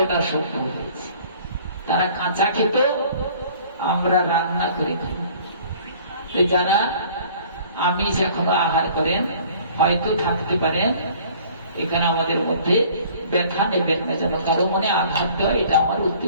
সভ্য হয়েছে। তারা কাঁচা খেত, আমরা রান্না করে খাই। যারা আমিষ এখনো আহার করেন হয়তো থাকতে পারেন এখানে আমাদের মধ্যে, ব্যথা নেবেন না, যেন কারো মনে আঘাত দেওয়া এটা আমার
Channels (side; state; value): both; inverted; correlation -0.52